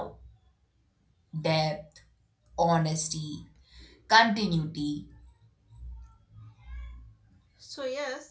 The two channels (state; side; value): identical; both; correlation 1.00